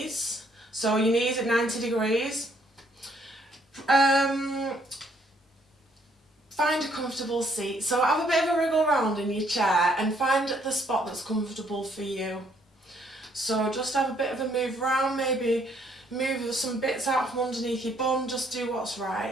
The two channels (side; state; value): both; normal; correlation 0.67